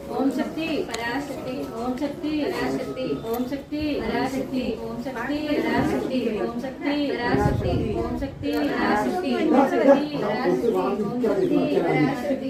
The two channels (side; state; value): both; identical; correlation 1.00